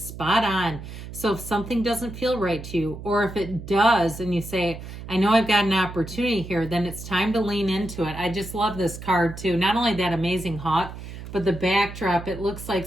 on. So if something doesn't feel right to you, or if it does, and you say, I know I've got an opportunity here, then it's time to lean into it. I just love this card too. Not only that amazing hawk, but the backdrop, it looks like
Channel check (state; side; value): noise; right; hum, 11 dB below the sound